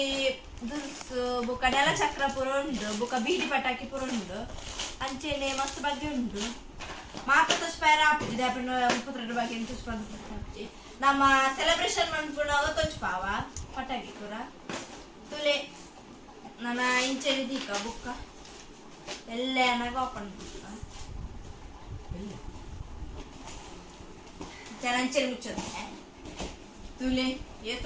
ದುರ್ಸು ಬುಕ್ಕ ನೆಲ ಚಕ್ರ ಪುರ ಉಂಡು ಬುಕ್ಕ ಬೀಡಿ ಪಟಾಕಿ ಪುರ ಉಂಡು ಅಂಚೆನೆ ಮಸ್ತ್ ಬಗ್ಗೆ ಉಂಡು ಮಾತ ತುಷ್ಪಾರ ಆಪಿದೆ 32 ಬಗ್ಗೆ ತುಷ್ಪಾಂತಿ ನಮ್ಮ ಸೆಲೆಬ್ರೇಷನ್ ಮಾಡ್ಕೊಂಡಾಗ ತುಷ್ಪಾವ ಪಟಾಕಿ ಪುರ ತುಲೆ ನನ್ನ ಇಂಚೆನೆ ದೀಕ ಬುಕ್ಕ ಎಲ್ಲ ಏನಾಗ ಓಪನ್ ಅಂಚೆನೆ ಮುಚ್ಚೋದು ತುಲೆ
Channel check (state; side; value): identical; both; correlation 1.00